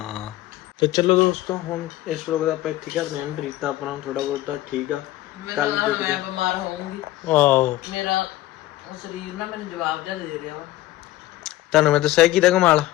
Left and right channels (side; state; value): right; quieter; 15.7 dB